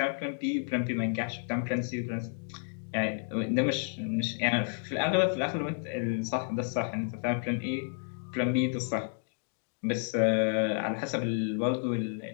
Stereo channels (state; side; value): silent; right; 57 dB below the other